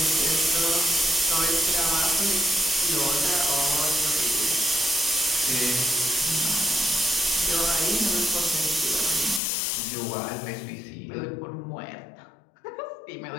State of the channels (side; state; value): right; drops out; at 9.4 s